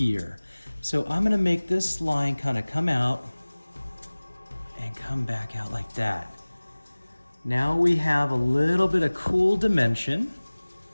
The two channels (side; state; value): both; inverted; correlation -1.00